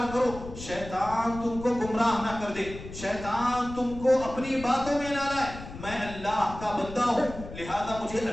کرو، شیطان تم کو گمراہ نہ کر دے، شیطان تم کو اپنی باتوں میں نہ لائے، میں اللہ کا بندہ ہوں لہذا مجھے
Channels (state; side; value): noise; left; rumble, 12 dB below the sound